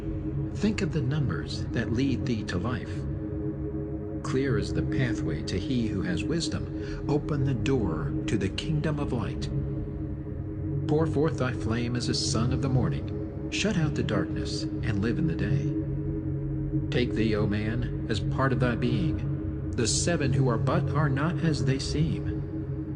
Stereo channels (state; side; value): identical; both; correlation 1.00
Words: Think of the numbers that lead thee to life. Clear is the pathway to he who has wisdom. Open the door to the kingdom of light. Pour forth thy flame as a sun of the morning. Shut out the darkness and live in the day. Take thee, O man, as part of thy being. The 7 who are but are not as they